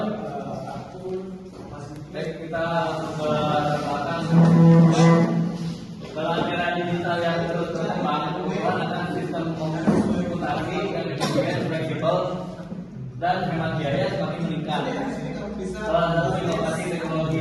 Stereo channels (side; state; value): both; identical; correlation 1.00